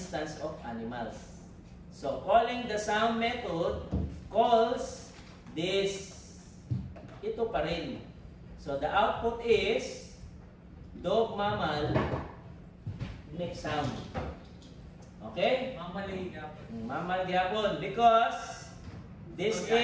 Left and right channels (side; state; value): both; identical; correlation 1.00